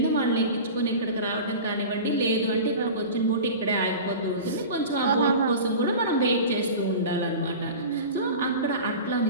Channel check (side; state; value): both; inverted; correlation -0.34